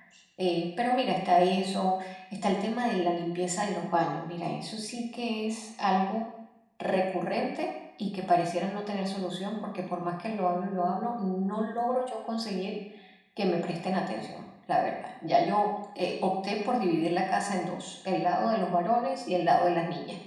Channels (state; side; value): identical; both; correlation 1.00